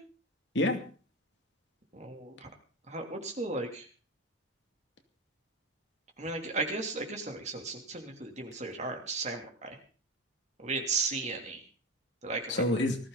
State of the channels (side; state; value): both; normal; correlation 0.20